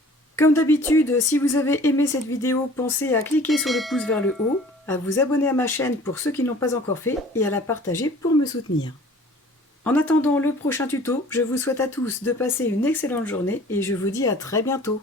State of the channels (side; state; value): both; normal; correlation 0.49